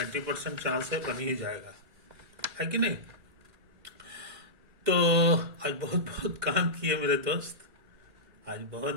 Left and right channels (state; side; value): late; left; 2.1 ms